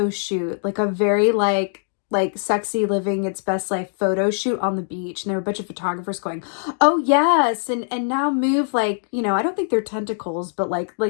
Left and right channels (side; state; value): right; silent; digital silence